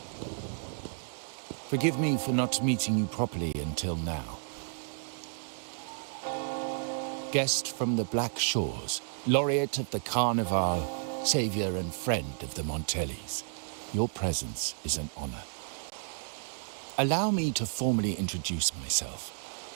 Forgive me for not meeting you properly until now. Guest from the Black Shores, laureate of the Carnival, savior and friend of the Montellis. Your presence is an honor. Allow me to formally introduce myself.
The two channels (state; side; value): silent; left; digital silence